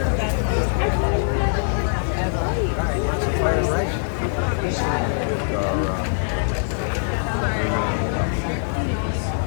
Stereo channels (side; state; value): right; silent; digital silence